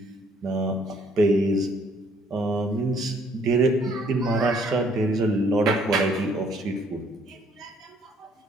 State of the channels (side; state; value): both; normal; correlation 0.64